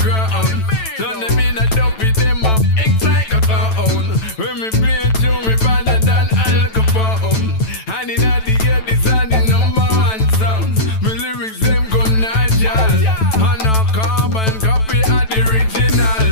Turn them in and dump it them up. It's like a clown. When me play a tune, me better than Al Capone. And in the ear, this are the #1 sounds. My lyrics them go natural. And no carbon copy of the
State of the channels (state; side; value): late; right; 9.1 ms